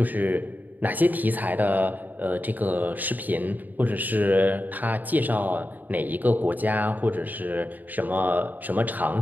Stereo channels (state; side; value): late; left; 0.084 ms